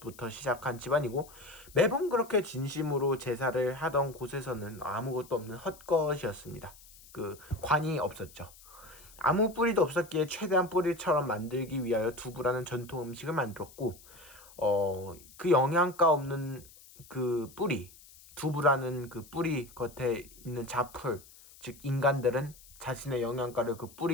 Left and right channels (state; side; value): noise; left; hiss, 22 dB below the sound